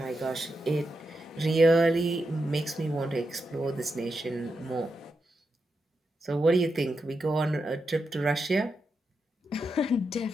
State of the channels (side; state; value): both; normal; correlation 0.86